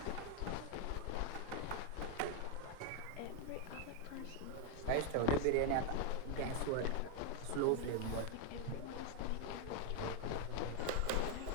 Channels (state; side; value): different; both; correlation 0.01